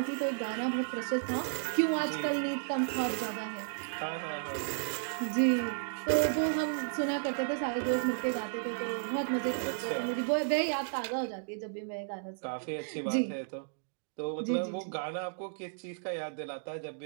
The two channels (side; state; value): left; silent; digital silence